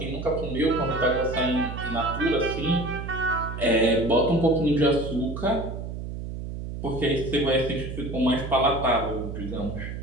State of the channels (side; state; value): right; noise; hum, 7 dB below the sound